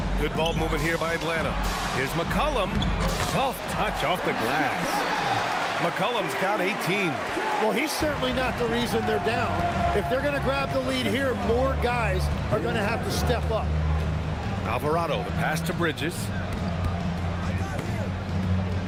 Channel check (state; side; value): identical; both; correlation 1.00